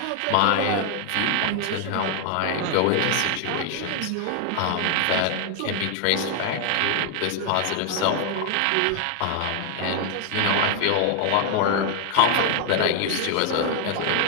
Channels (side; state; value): both; different; correlation 0.00